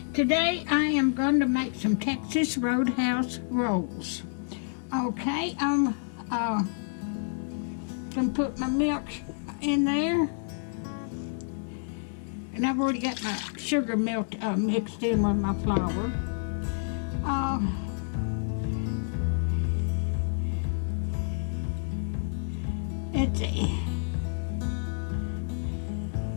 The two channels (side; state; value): right; silent; digital silence